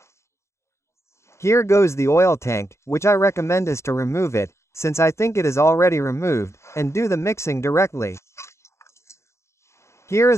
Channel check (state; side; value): late; right; 0.14 ms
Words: Here goes the oil tank, which I recommend is to remove it, since I think it is already removed, and do the mixing directly. Here